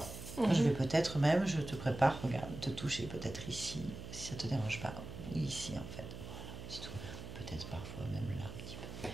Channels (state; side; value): noise; right; hum, 10 dB below the sound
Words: Je vais peut-être même, je te prépare, regarde, te toucher peut-être ici, si ça ne te dérange pas. Oui, ici, en fait. Voilà, c'est tout. Peut-être parfois même là, un petit peu.